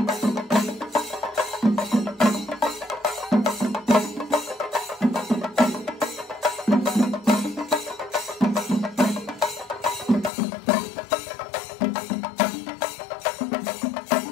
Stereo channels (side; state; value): right; drops out; at 10.3 s